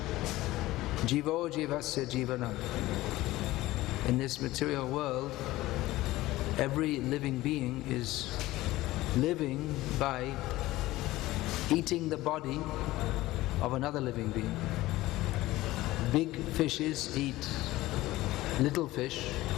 Jivo jivasya jivanam. In this material world, every living being is living by eating the body of another living being. Big fishes eat little fish,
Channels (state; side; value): quieter; right; 17.5 dB